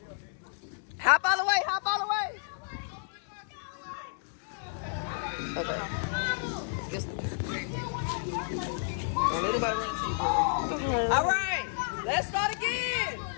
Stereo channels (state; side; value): silent; right; digital silence